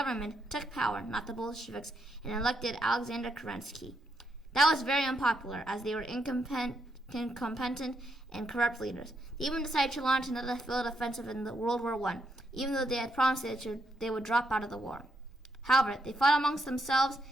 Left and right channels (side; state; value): both; normal; correlation 0.79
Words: took power, not the Bolsheviks, and elected Alexander Kerensky. That was very unpopular, as they were incompetent and corrupt leaders. They even decided to launch another field offensive in the World War I, even though they had promised they would drop out of the war. However, they fought amongst themselves